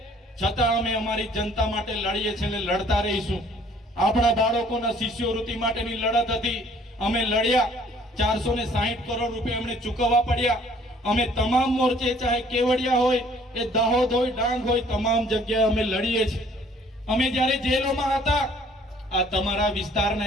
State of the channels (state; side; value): normal; both; correlation 0.57